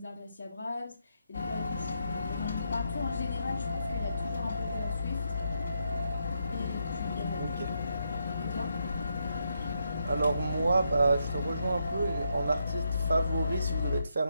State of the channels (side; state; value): both; inverted; correlation -0.80